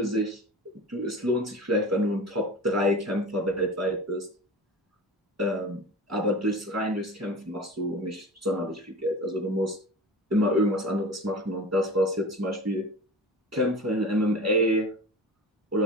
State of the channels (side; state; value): both; normal; correlation 0.34